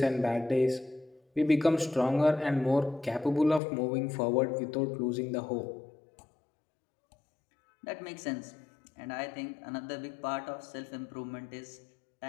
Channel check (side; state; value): right; drops out; at 3.6 s